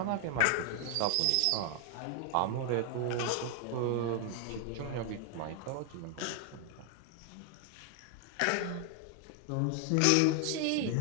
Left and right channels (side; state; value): both; different; correlation 0.00